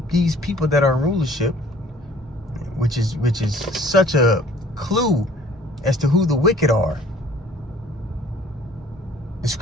people that are in rulership, which is such a clue as to who the wicked are. The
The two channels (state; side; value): normal; both; correlation 0.54